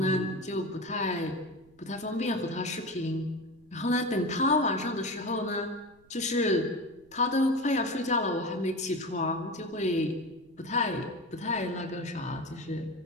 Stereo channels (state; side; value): noise; right; rumble, 29 dB below the sound